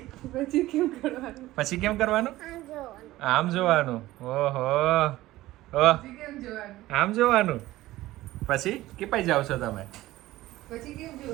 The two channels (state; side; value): quieter; left; 16.7 dB